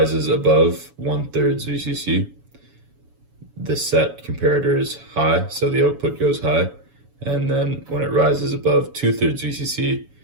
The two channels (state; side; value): late; left; 7.1 ms